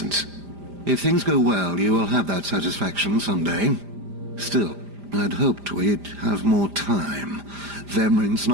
If things go well, you will have that satisfaction someday. Still, I'd hoped we'd have more time. Vemrin's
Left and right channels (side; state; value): left; late; 5.0 ms